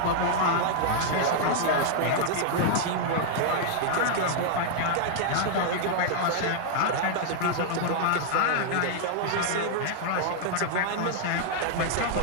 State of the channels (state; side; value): different; both; correlation -0.01